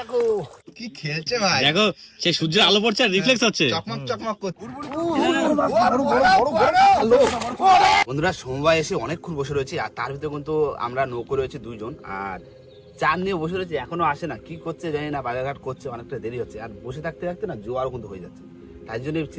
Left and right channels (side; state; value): both; identical; correlation 1.00